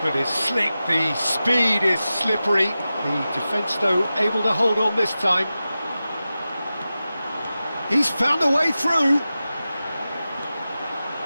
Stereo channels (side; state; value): both; inverted; correlation -0.94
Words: is slick, the speed is slippery. The defence, though, able to hold on this time. He's found a way through.